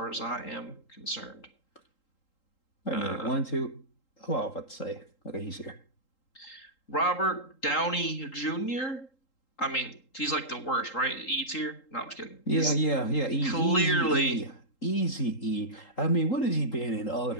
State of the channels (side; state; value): right; late; 3.8 ms